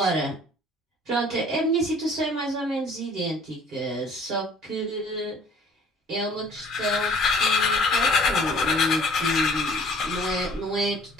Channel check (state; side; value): normal; both; correlation 0.52